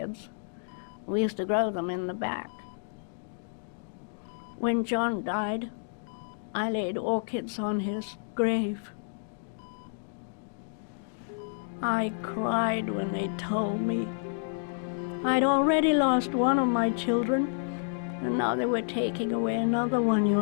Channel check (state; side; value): silent; right; digital silence